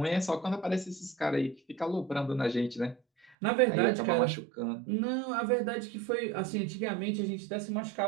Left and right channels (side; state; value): left; drops out; at 3.3 s